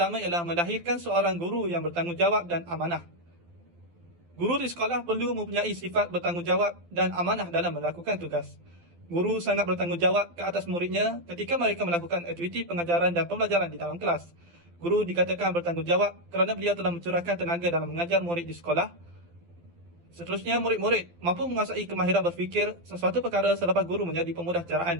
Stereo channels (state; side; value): late; left; 12 ms